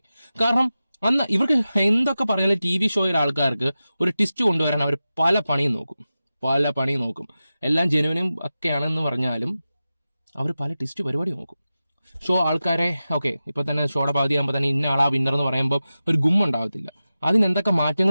കാരണം അന്ന് ഇവർക്ക് എന്തൊക്കെ പറഞ്ഞാലും TV ഷോയിലെ ആൾക്കാർക്ക് ഒരു ട്വിസ്റ്റ് കൊണ്ടുവരാൻ അവർ പല പണിയും നോക്കും. എല്ലാം ജെനുവിനും ഒക്കെയാണെന്ന് പറഞ്ഞാലും അവർ പല ട്വിസ്റ്റ് പരിപാടി നോക്കും. ഷോ ആൾക്കാരെ ഇപ്പൊ തന്നെ ഷോയുടെ പകുതിയാകുമ്പോൾ തന്നെ ഇന്ന ആളാ വിന്നർ എന്ന് പറയുമ്പോൾ ഒരു ഗുമ്മുണ്ടാവത്തില്ല. അതിനെന്തൊക്കെ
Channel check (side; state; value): both; inverted; correlation -0.94